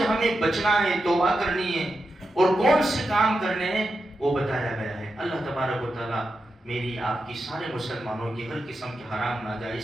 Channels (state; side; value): normal; both; correlation 0.89